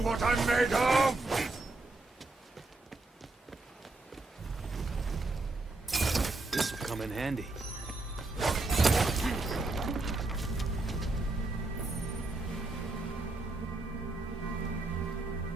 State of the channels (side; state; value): left; quieter; 3.1 dB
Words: what I'm made of! This will come in handy.